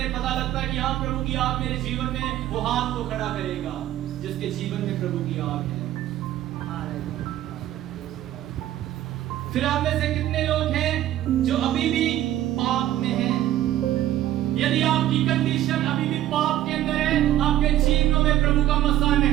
पता लगता है कि हाँ प्रभु की आग मेरे जीवन में, वो हाथ को खड़ा करेगा जिसके जीवन में प्रभु की आग है। फिर आप में से कितने लोग हैं जो अभी भी पाप में हैं? यदि आपकी कंडीशन अभी भी पाप के अंदर है, आपके जीवनों में प्रभु का मसा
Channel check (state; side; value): quieter; left; 13.2 dB